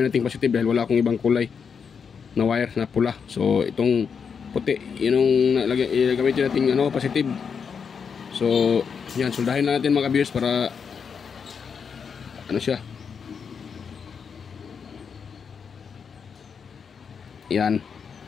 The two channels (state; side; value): quieter; right; 6.4 dB